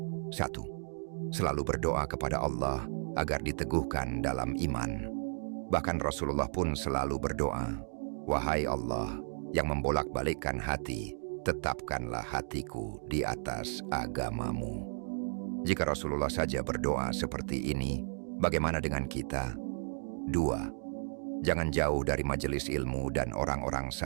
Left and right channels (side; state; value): left; silent; digital silence